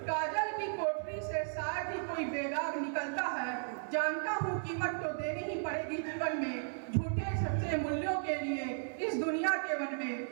कोठरी से शायद ही कोई बेदाग निकलता है। जानता हूँ कीमत तो देनी ही पड़ेगी जीवन में, झूठे सच्चे मूल्यों के लिए इस दुनिया के वन में।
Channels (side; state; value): left; silent; digital silence